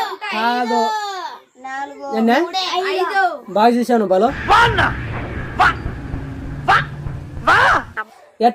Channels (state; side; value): identical; both; correlation 1.00